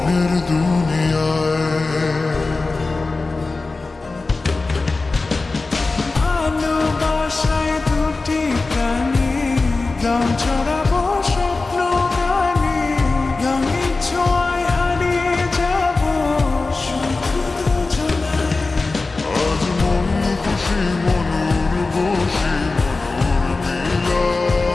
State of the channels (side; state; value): right; quieter; 3.6 dB